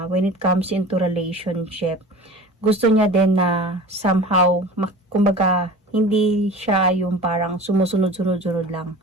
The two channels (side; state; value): both; normal; correlation 0.38